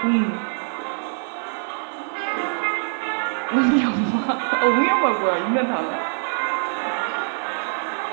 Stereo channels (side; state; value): left; silent; 58 dB below the other